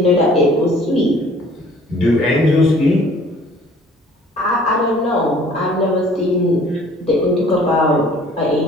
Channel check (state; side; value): normal; both; correlation 0.53